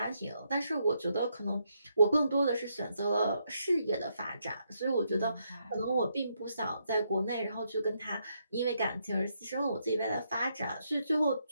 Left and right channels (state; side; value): inverted; both; correlation -0.78